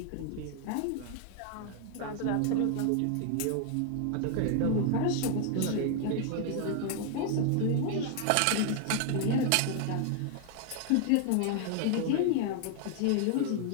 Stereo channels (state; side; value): different; both; correlation 0.00